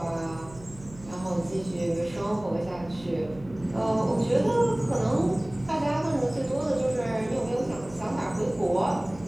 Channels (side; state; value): right; noise; hum, 19 dB below the sound